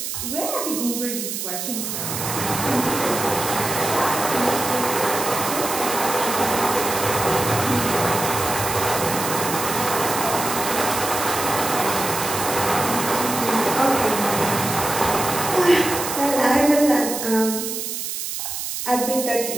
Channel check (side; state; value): right; noise; hiss, 4 dB below the sound